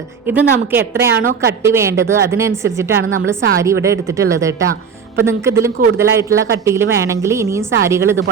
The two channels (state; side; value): quieter; left; 6.3 dB